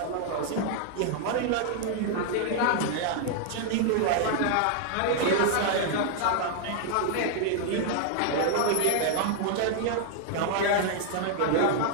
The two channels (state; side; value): different; both; correlation 0.00